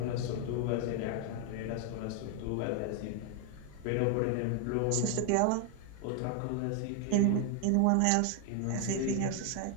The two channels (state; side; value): different; both; correlation 0.00